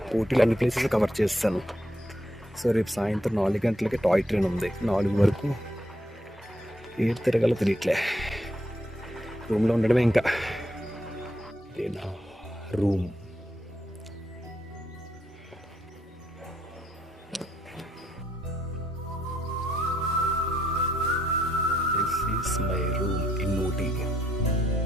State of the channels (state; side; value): normal; both; correlation 0.76